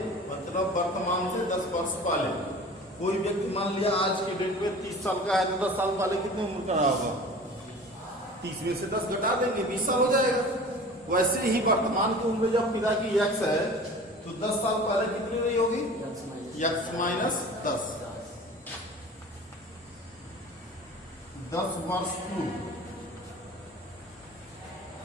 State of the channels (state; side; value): normal; both; correlation 0.40